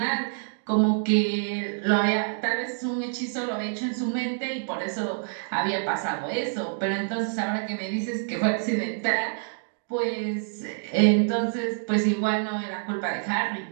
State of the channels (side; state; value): left; silent; digital silence